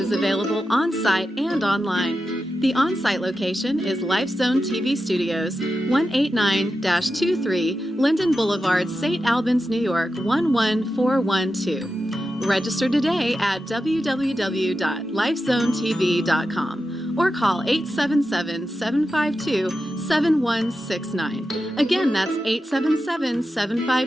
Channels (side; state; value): both; normal; correlation 0.90